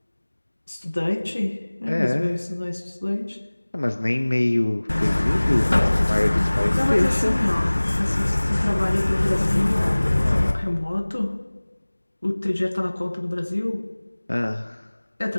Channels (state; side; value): inverted; both; correlation -1.00